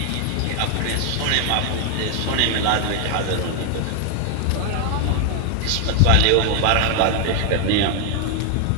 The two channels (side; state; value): both; different; correlation 0.00